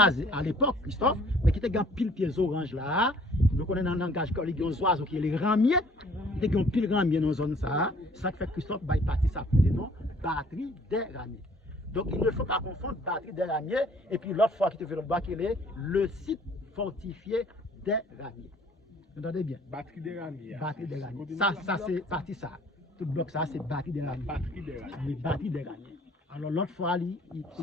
à l'époque, Christophe, mais qui était un pile pieds orange là. Nous connaissons dans le langage qu'il y a des oiseaux qui sont les ramiers. Il y a un pile ramier dans la zone ça. Ça fait Christophe va partir ça pour non batterie des ramiers. Donc, il ne faut pas confondre batterie des ramiers et puis l'autre fois qui te fait le bas, qui est le site fortifié des ramiers. Vous entendez bien? Batterie des ramiers. Batterie des ramiers. Ça c'est parti ça. Tout bloc ça, c'est batterie des ramiers. Batterie des ramiers. Les batteries des ramiers. Alors l'autre fois, il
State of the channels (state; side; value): normal; both; correlation 0.57